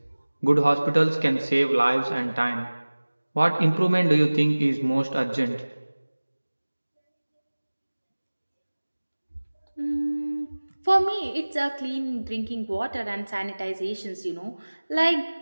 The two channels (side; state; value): both; inverted; correlation -1.00